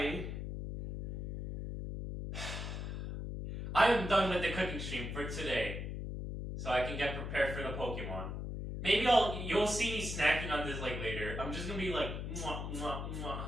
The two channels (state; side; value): noise; left; hum, 5 dB below the sound